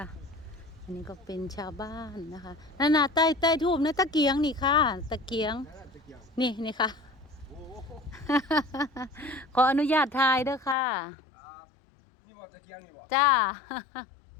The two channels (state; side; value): drops out; right; at 10.8 s